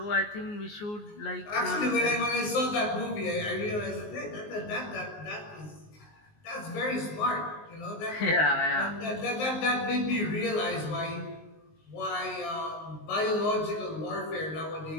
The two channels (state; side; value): late; right; 19 ms